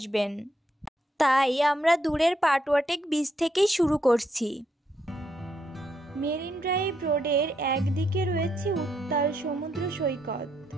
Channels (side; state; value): both; normal; correlation 0.77